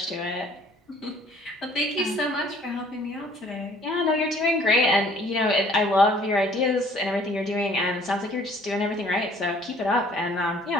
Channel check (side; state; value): both; normal; correlation 0.56